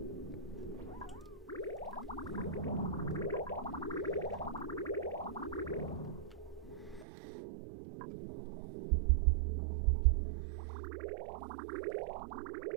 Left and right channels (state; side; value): drops out; left; at 7.1 s